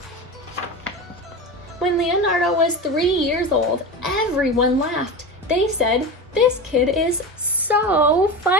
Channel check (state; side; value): normal; both; correlation 0.25